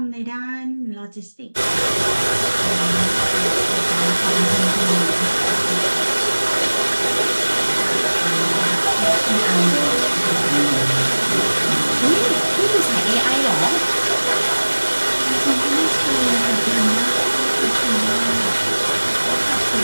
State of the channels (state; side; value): inverted; both; correlation -1.00